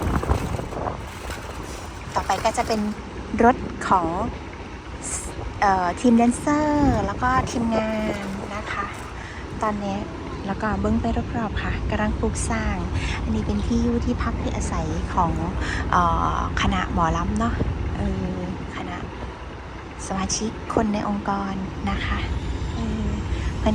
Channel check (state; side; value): identical; both; correlation 1.00